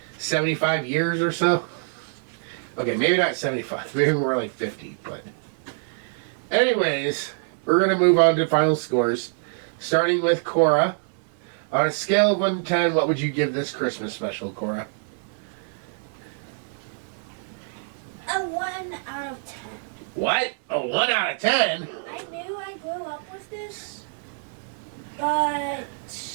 75 years or so. Okay, maybe not 75, maybe more like 50, but anyways, we're going to move on to final scores, starting with Cora. On a scale of 1 to 10, what would you give this Christmas special, Cora? A 1 out of 10. What? A 1 out of 10? I knew I grew up with this, but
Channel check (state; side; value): silent; left; 57 dB below the other